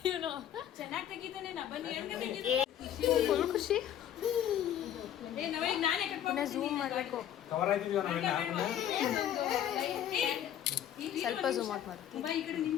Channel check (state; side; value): quieter; right; 10.6 dB